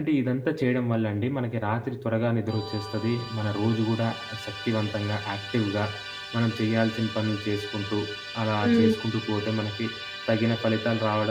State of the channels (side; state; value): both; identical; correlation 1.00